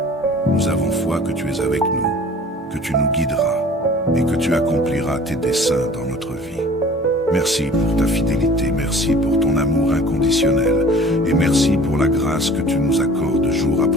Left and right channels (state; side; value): normal; both; correlation 0.46